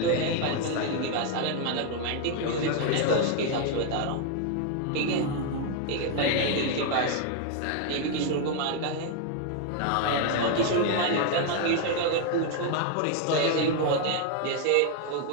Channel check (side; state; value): both; different; correlation 0.00